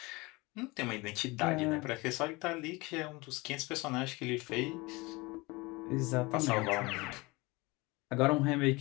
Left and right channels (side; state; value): right; quieter; 24.0 dB